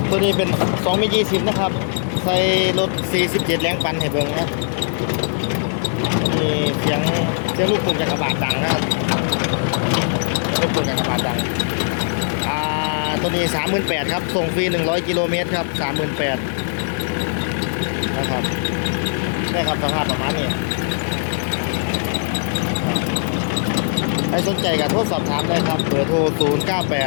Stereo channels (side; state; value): right; silent; digital silence